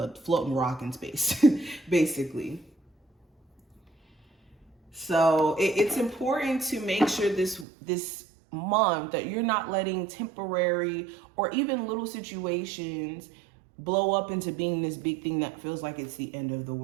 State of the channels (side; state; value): left; drops out; at 7.7 s